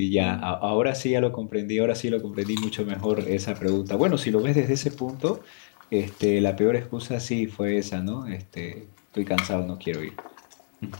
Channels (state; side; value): silent; right; 61 dB below the other